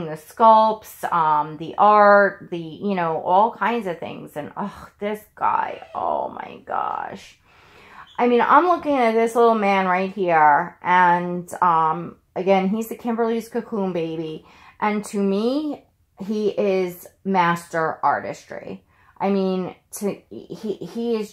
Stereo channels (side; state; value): both; identical; correlation 1.00